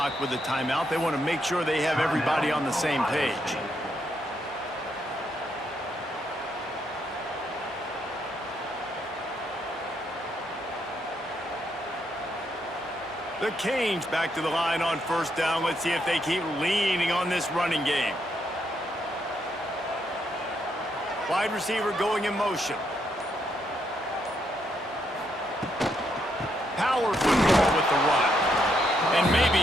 with a timeout. They want to make sure they have everybody on the same page. The Canes back to the line on first down. Let's see if they keep leaning on this running game. Wide receiver going in motion. Power football with the run. And maybe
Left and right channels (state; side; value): normal; both; correlation 0.77